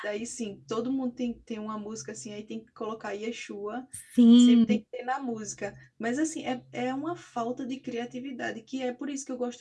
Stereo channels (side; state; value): both; identical; correlation 1.00